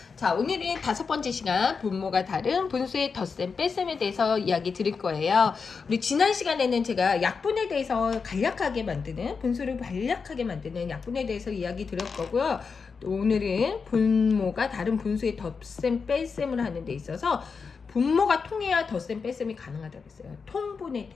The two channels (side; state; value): right; quieter; 5.3 dB